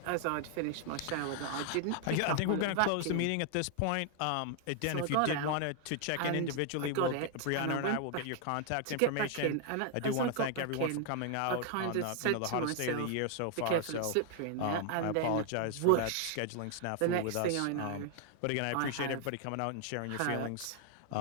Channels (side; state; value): both; different; correlation 0.00